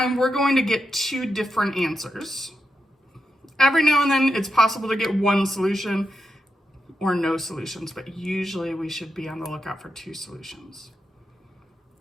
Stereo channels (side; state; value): both; normal; correlation 0.87